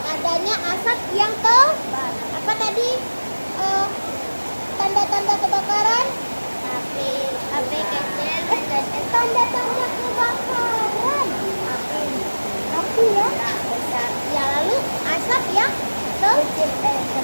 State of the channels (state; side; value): inverted; both; correlation -1.00